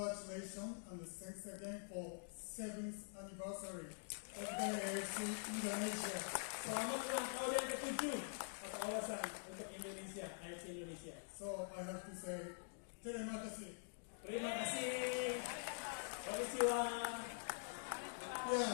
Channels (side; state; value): right; silent; digital silence